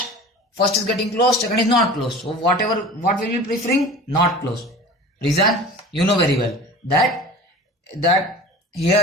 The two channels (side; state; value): both; normal; correlation 0.39